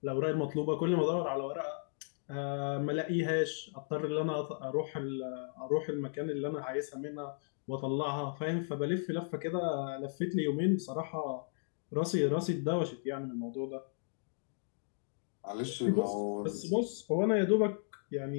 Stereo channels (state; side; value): silent; right; digital silence